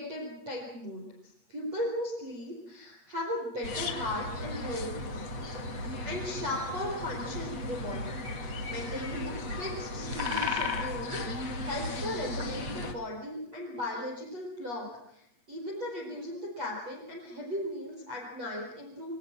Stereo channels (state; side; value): late; left; 8.4 ms